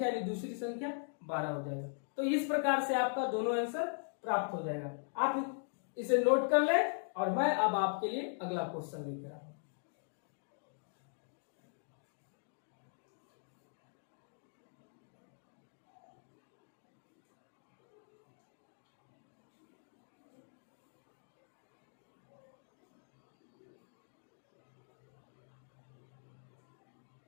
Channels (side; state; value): right; silent; digital silence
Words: यानी दूसरी संख्या 12 हो जाएगा। तो इस प्रकार से आपका दोनों आंसर प्राप्त हो जाएगा। आप इसे नोट कर लें और मैं अब आपके लिए अगला क्वेश्चन लेकर आऊंगा।